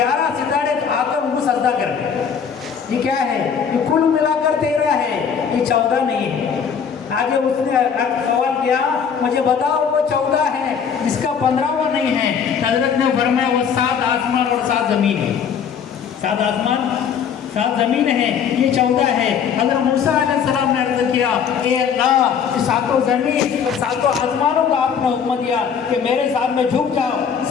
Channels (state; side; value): quieter; right; 7.1 dB